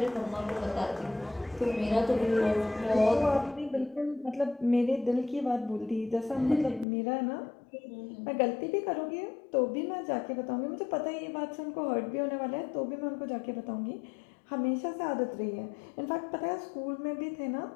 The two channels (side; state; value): right; drops out; at 6.9 s